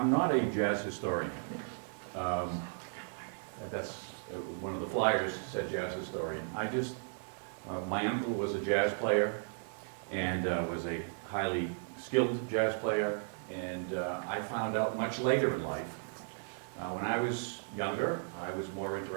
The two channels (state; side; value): silent; left; digital silence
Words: not a jazz historian. That's one of the flyers said jazz historian. My uncle was a jazz player and was a highly skilled jazz player, and I found out much later in life. When I was younger, I was more